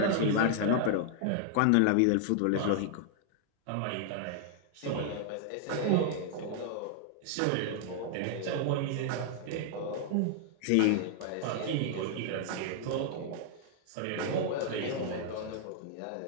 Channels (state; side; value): different; both; correlation 0.00